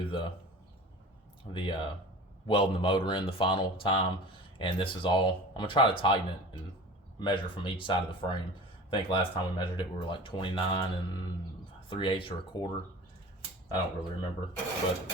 the welding the motor in the final time, and this is all, I'm gonna try to tighten it and measure from each side of the frame. I think last time we measured it, we were like 29 3/8 or a quarter. I don't really remember, but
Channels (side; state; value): both; normal; correlation 0.38